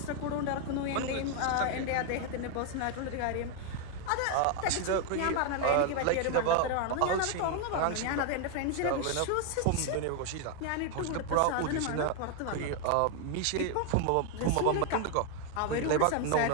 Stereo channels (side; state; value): both; different; correlation 0.00